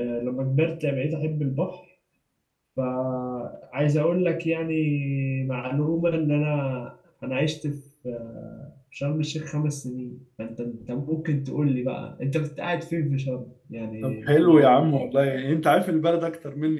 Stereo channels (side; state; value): both; identical; correlation 1.00